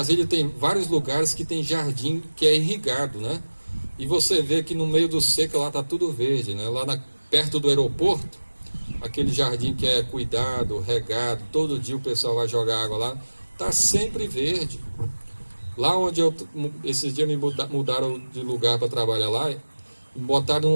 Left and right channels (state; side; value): inverted; both; correlation -1.00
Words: tem vários lugares que tem jardim que é irrigado, né? e você vê que no meio do seco lá está tudo verde, né? Perto do aeroporto, aquele jardim que é cuidado, regado, todo dia o pessoal vai jogar água lá, está sempre verde. Lá onde esses dias me mudaram de lugar para trabalhar lá, me